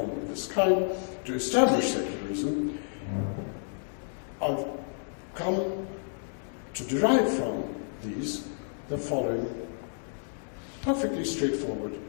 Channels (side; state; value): right; silent; digital silence